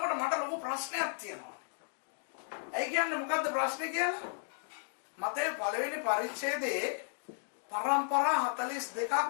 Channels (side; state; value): right; silent; digital silence